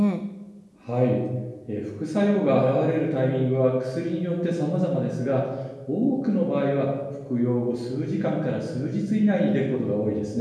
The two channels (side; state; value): both; identical; correlation 1.00